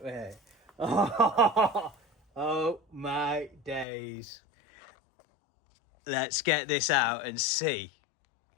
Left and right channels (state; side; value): drops out; right; at 3.9 s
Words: it. Oh my days. Let's get this out and see